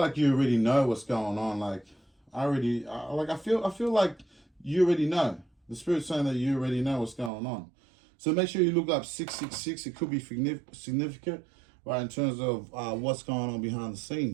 you already know what's going on. Like, I feel like you already know. The spirit's saying that you already know what's going on. So make sure you look up 666. It could be significant, right, in terms of what's going on behind the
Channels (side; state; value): left; drops out; at 7.3 s